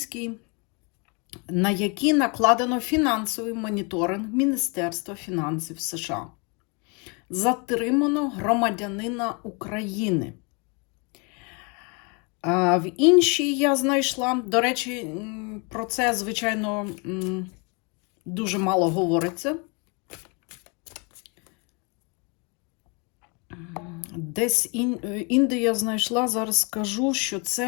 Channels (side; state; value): right; quieter; 32.5 dB